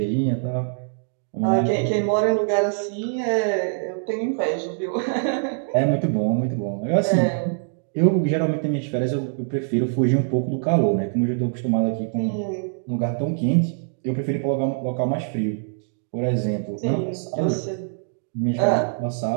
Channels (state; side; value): silent; left; digital silence